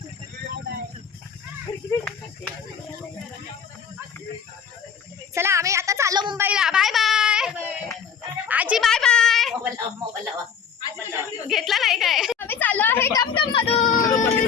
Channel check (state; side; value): quieter; right; 7.1 dB